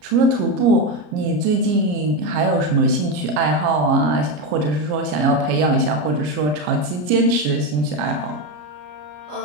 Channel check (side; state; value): left; late; 33 ms